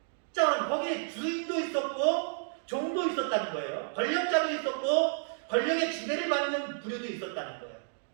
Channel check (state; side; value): silent; left; digital silence